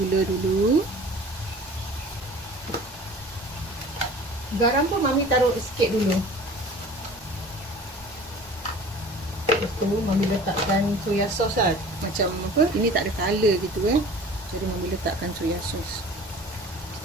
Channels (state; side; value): normal; both; correlation 0.44